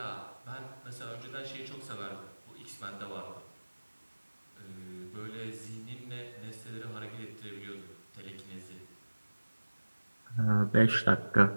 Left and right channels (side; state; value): both; inverted; correlation -1.00